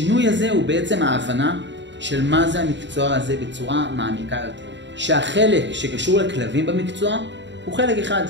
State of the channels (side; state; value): left; late; 0.52 ms